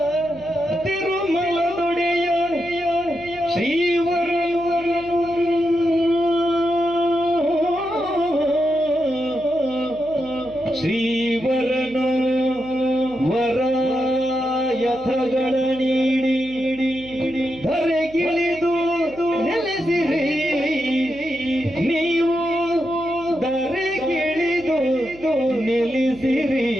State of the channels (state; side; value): noise; right; hum, 21 dB below the sound